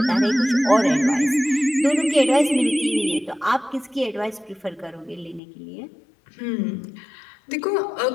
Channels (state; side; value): drops out; right; at 5.4 s